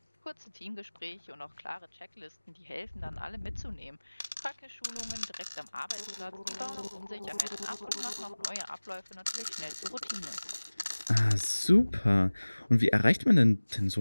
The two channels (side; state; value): both; inverted; correlation -1.00